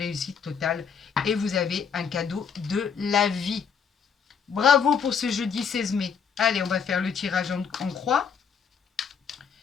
totale. Et vous avez un cadeau de la vie. Bravo pour ce jeudi 16 mai. Allez, on va faire le tirage en croix.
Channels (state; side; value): quieter; right; 6.6 dB